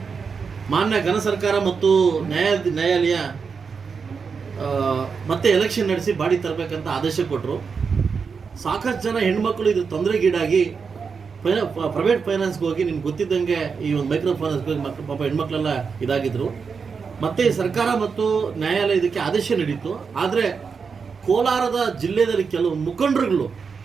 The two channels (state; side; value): quieter; left; 5.6 dB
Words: ಮಾನ್ಯ ಘನ ಸರ್ಕಾರ ಮತ್ತು ನ್ಯಾಯಾಲಯ ಮತ್ತೆ ಎಲೆಕ್ಷನ್ ನಡೆಸಿ ಬಾಡಿ ತರಬೇಕಂತ ಆದೇಶ ಕೊಟ್ಟರು. ಸಾಕಷ್ಟು ಜನ ಹೆಣ್ಮಕ್ಳು ಇದು ತೊಂದರೆಗೀಡಾಗಿ ಪ್ರೈವೇಟ್ ಫೈನಾನ್ಸ್ಗೆ ಹೋಗಿ ನಿಮ್ಗೆ ಗೊತ್ತಿದ್ದಂಗೆ ಈ ಒಂದು ಮೈಕ್ರೋ ಫೈನಾನ್ಸ್ಗೆ ಹೋಗಿ ಪಾಪ ಹೆಣ್ಮಕ್ಳೆಲ್ಲ ಇದಾಗಿದ್ರು. ಮತ್ತೆ ಸರ್ಕಾರ ಮತ್ತು ನ್ಯಾಯಾಲಯ ಇದಕ್ಕೆ ಆದೇಶ ನೀಡಿತ್ತು. ಆದರೆ ಕೋಲಾರದ ಜಿಲ್ಲೆಯಲ್ಲಿ ಕೆಲವು ಮುಖಂಡರುಗಳು